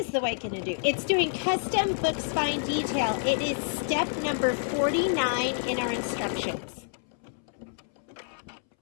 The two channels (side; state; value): right; silent; 59 dB below the other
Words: the white going to do? It's doing custom book spine detail. It is step number 49 in our instructions.